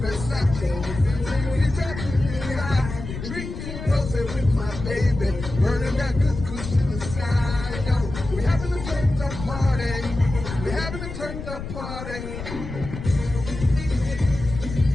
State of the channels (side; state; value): left; noise; rumble, 8 dB below the sound